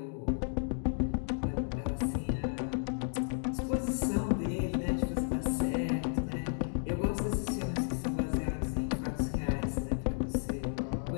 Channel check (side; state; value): right; silent; digital silence